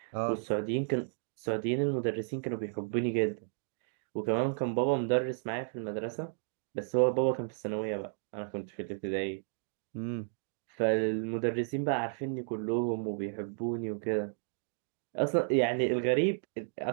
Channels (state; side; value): silent; left; digital silence